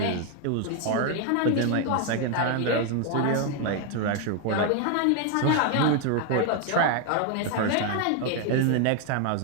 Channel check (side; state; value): both; different; correlation 0.00